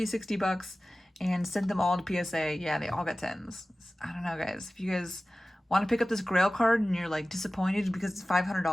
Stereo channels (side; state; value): both; normal; correlation 0.97